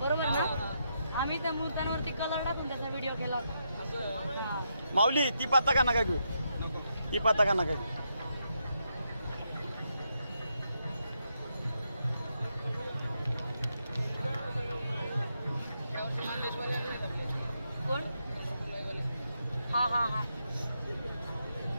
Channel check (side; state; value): both; inverted; correlation -0.81